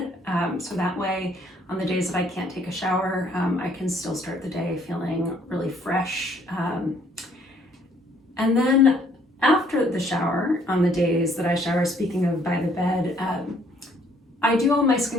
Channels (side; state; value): both; normal; correlation 0.63